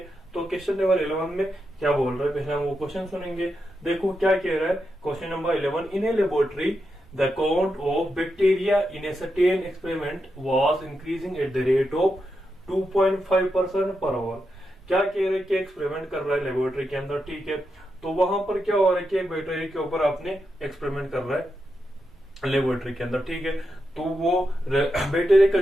तो क्वेश्चन नंबर 11 में क्या बोल रहा है पहले हम वो क्वेश्चन सुनेंगे। देखो क्या कह रहा है question number 11। In a laboratory the count of bacteria in a certain experiment was increasing at the rate of 2.5% per hour। क्या कह रहे हैं कि एक्सपेरिमेंट कर रहा है लेबोरेटरी के अंदर। ठीक है, तो वहां पर क्या हो रहा है कि एक बैक्टीरिया के ऊपर आपने एक्सपेरिमेंट कर रहा है लेबोरेटरी के अंदर। ठीक है, तो वो बैक्टीरिया का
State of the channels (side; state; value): both; normal; correlation 0.86